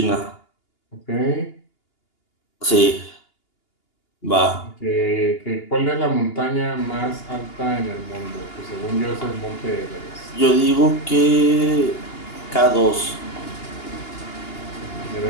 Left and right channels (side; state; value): right; late; 2.8 ms